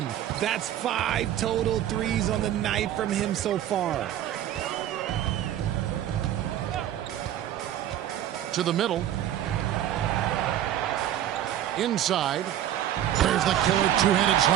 That's 5 total threes on the night from him so far. To the middle. Inside. There's There's the killer two-handed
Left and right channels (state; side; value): quieter; left; 11.6 dB